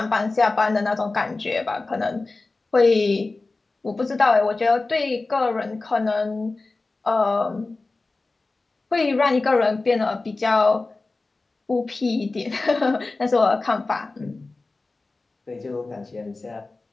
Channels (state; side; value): quieter; right; 3.5 dB